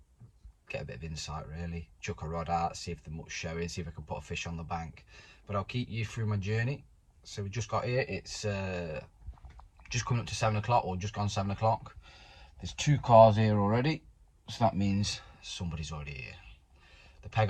Get a bit of insight really. Chuck a rod out, see if the muck's showing, see if I can put a fish on the bank. But I'll keep you through my journey. So we just got here. It's just coming up to 7 o'clock, or just gone 7 o'clock. There's 2 cars here already. So that means somebody's already here. The peg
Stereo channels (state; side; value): identical; both; correlation 1.00